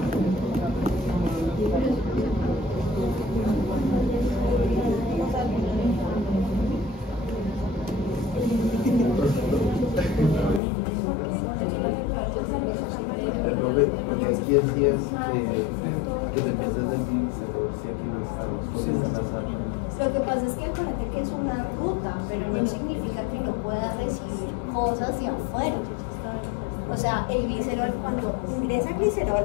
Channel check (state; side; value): drops out; right; at 10.6 s